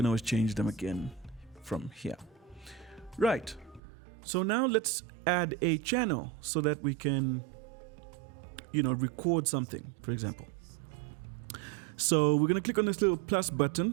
always change them again from here. Right. So now let's add a channel so that we can record something, for example. So we're going to click on this little plus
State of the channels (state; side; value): drops out; left; at 3.8 s